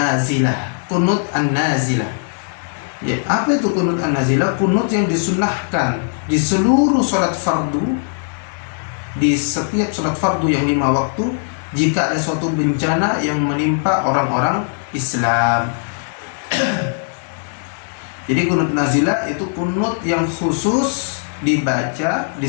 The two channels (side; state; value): right; silent; digital silence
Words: kunut an-nazilah. Ya, apa itu kunut an-nazilah? Kunut yang disunahkan di seluruh salat fardu, di setiap salat fardu yang 5 waktu, jika ada suatu bencana yang menimpa orang-orang Islam. Jadi kunut nazilah itu kunut yang khusus dibaca,